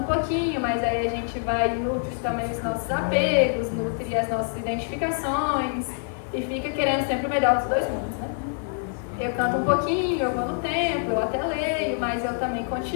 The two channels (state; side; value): silent; right; digital silence